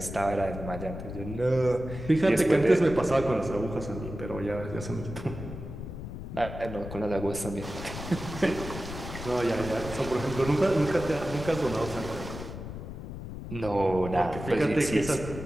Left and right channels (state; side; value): noise; left; rumble, 9 dB below the sound